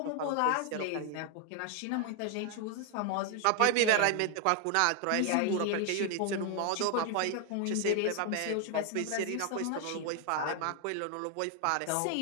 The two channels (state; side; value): different; both; correlation 0.00